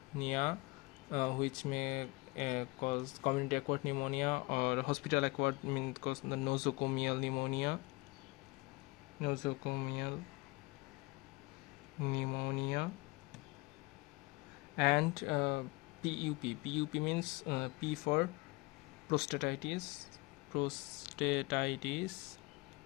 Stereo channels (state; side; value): quieter; right; 24.4 dB